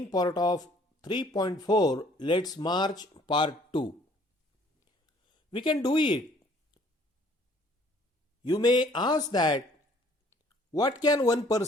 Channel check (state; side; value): normal; both; correlation 0.59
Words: part of 3.4 Let's March part 2. We can do it. You may ask that what can one